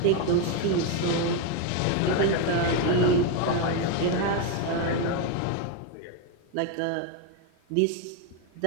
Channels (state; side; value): different; both; correlation 0.02